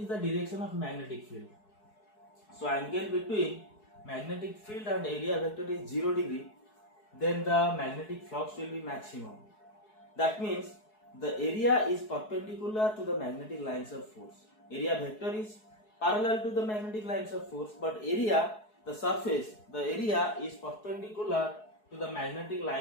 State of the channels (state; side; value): late; right; 4.7 ms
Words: the direction of magnetic field. So angle between magnetic field and area vector is 0 degree, then the magnetic flux will be maximum. That means the area is perpendicular to the magnetic lines of force. Area vector is parallel to the magnetic lines of force, but area, the surface, the area is perpendicular to the magnetic